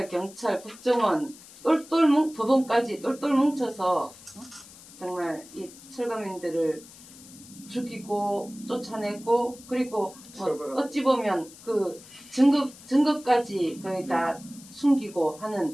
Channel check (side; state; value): left; noise; hiss, 20 dB below the sound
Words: 경찰, 국정원 법원까지 똘똘 뭉쳐서 정말 이 철거민들을 죽이고 쫓아내고 그리고 뭐 처벌하고. 어찌 보면 그 증거까지 거의 다 숨기고